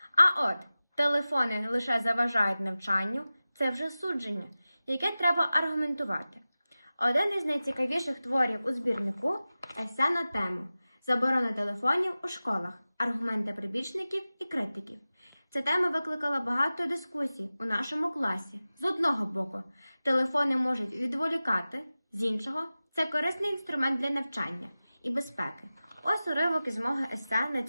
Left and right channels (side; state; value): both; inverted; correlation -0.96